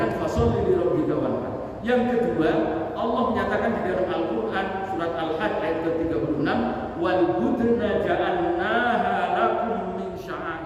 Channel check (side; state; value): both; identical; correlation 1.00